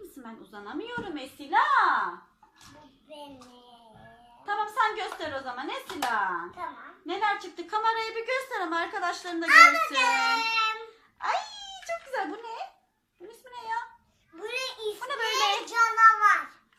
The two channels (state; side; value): identical; both; correlation 1.00